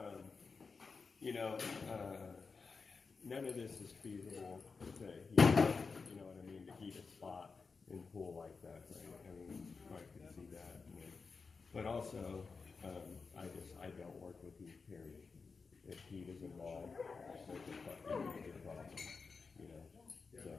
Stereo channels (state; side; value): quieter; right; 4.8 dB